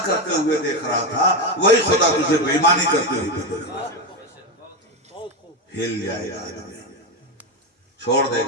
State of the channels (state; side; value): normal; both; correlation 0.12